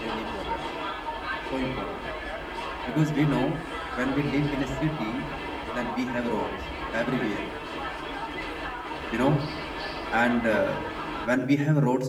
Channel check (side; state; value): both; identical; correlation 1.00